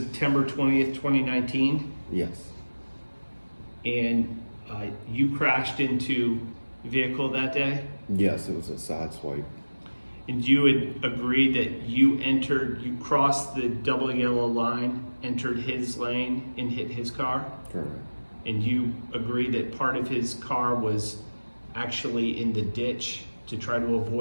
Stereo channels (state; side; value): inverted; both; correlation -1.00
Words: 20th, 2019? Yes. And you crashed into a vehicle that day? Yes, it was a side swipe. And you would agree that you crossed the double yellow line, entered his lane, and hit his car? Correct. And you agree that part of his car was actually in the ditch to try to